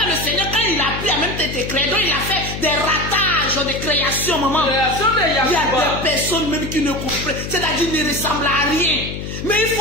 le Seigneur, quand il a pris à même tes crédits, il a fait des ratages de création, maman. Il y a des personnes même qui ne comprennent, c'est-à-dire qui ne ressemblent à rien. Mais il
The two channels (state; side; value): noise; left; hum, 7 dB below the sound